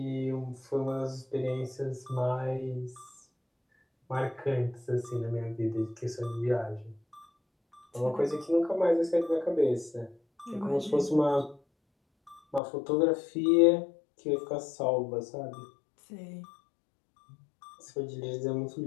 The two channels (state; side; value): drops out; right; at 12.6 s